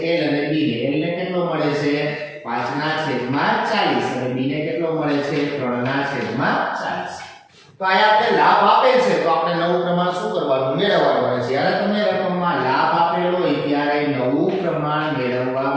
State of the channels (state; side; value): identical; both; correlation 1.00